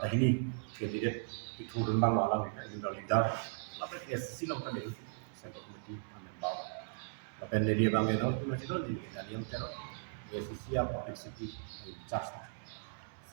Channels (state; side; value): silent; left; digital silence